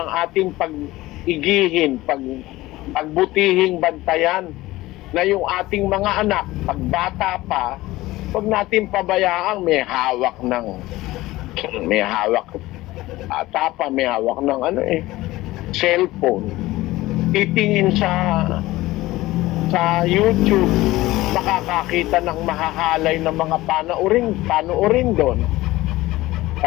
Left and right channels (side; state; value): right; quieter; 18.0 dB